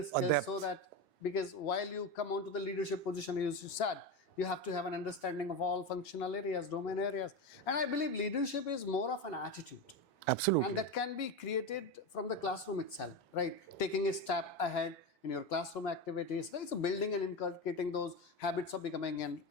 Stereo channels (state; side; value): normal; both; correlation 0.18